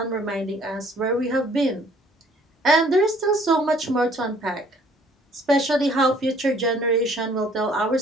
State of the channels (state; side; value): normal; both; correlation 0.58